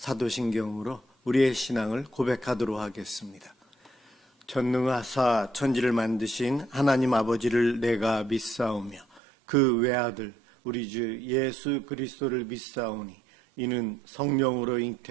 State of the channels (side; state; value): left; drops out; at 9.2 s